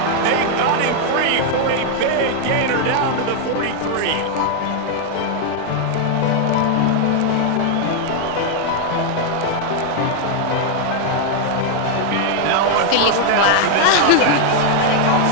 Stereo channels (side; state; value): both; different; correlation 0.00